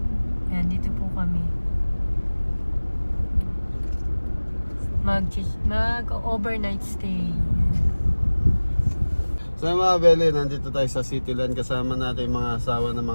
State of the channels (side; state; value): both; inverted; correlation -1.00